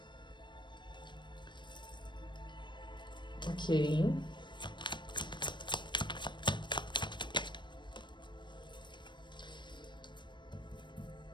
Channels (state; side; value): late; right; 0.22 ms